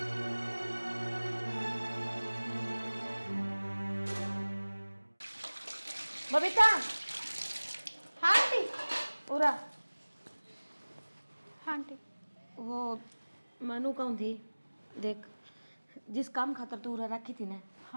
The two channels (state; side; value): inverted; both; correlation -1.00